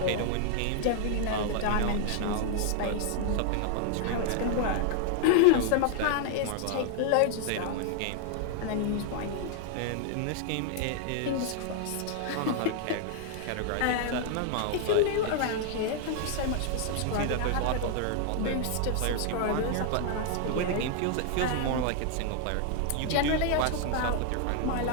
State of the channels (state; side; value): different; both; correlation 0.00